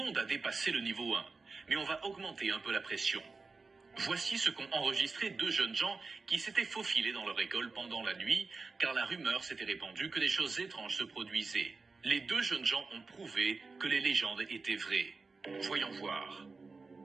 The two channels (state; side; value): quieter; left; 4.1 dB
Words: a dépassé le niveau 1, mais on va augmenter un peu la pression. Voici ce qu'ont enregistré 2 jeunes gens qui s'étaient faufilés dans leur école pendant la nuit, car la rumeur s'était répandue que des choses étranges se produisaient. Les 2 jeunes gens ont prouvé que les légendes étaient vraies. Voyons voir.